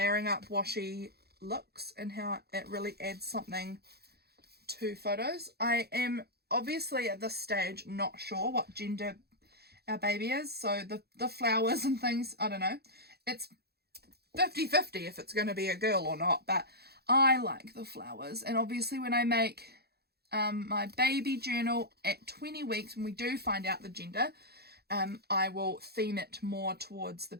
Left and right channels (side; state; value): left; late; 0.46 ms